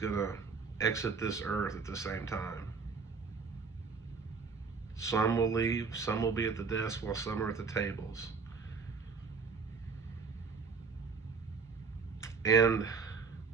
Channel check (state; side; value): quieter; left; 5.2 dB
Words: exit this earth at the same time. Some will leave, some will be at the desk while some are at the tables. And